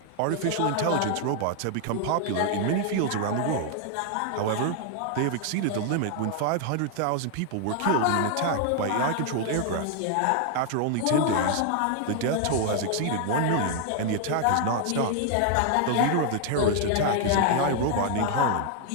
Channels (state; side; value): different; both; correlation 0.00